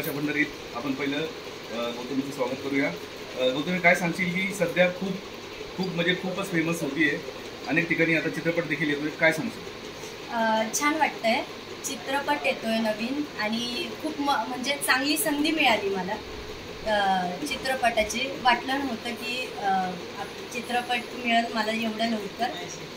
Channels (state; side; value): identical; both; correlation 1.00